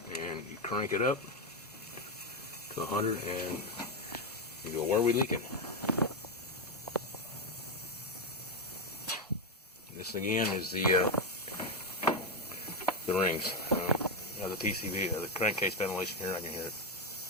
And you crank it up to 100, and you go, where are we leaking? This again is the rings. The PCV, the crankcase ventilation here. I can hear it.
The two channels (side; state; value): both; normal; correlation 0.07